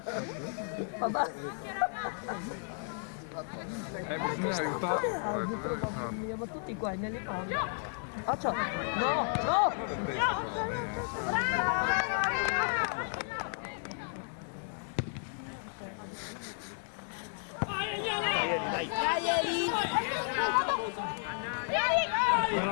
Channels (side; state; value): right; silent; 56 dB below the other